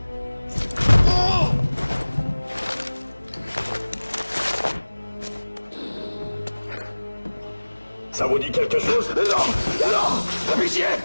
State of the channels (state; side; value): inverted; both; correlation -1.00